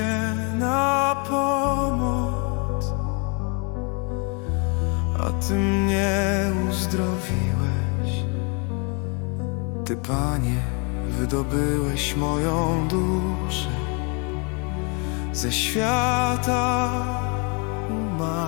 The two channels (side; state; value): right; quieter; 34.6 dB